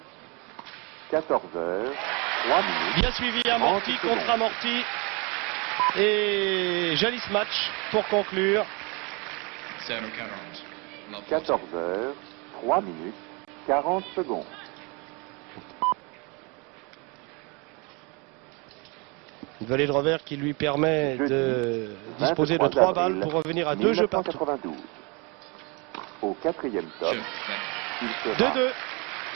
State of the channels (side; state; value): left; quieter; 29.6 dB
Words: 14h, 3 minutes, Bien suivi, amorti 30 contre secondes. amorti. Et joli match pour conclure. Zero 40, love 40. 14h, 3 minutes, 40 secondes. Une volée de revers qui lui permet Jeudi, de disposer de 23 3 balles avril pour revenir à 2 jeux partout. 1992. Au quatrième top, Jeu 20. il sera 2-2.